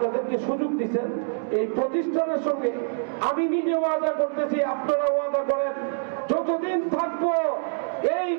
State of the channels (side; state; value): left; silent; digital silence